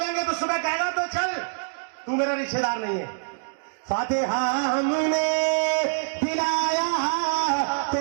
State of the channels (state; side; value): silent; left; digital silence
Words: तो सुबह कहेगा तो चल, तू मेरा रिश्तेदार नहीं है। फातिहा हमने दिलाया